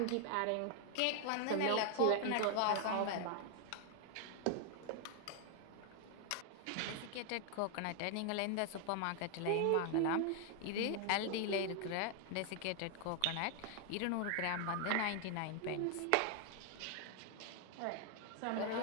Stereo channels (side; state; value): both; different; correlation 0.00